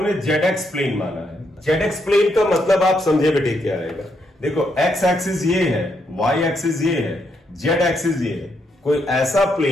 ZX प्लेन माना है। ZX प्लेन का मतलब आप समझे बेटे क्या रहेगा, देखो X एक्सिस ये है, Y एक्सिस ये है, Z एक्सिस ये है। कोई ऐसा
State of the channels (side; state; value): both; normal; correlation 0.78